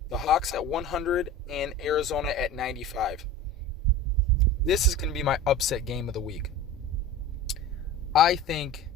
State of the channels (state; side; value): normal; both; correlation 0.35